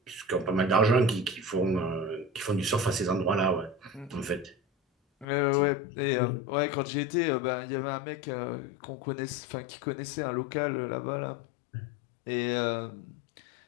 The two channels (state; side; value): drops out; right; at 5.2 s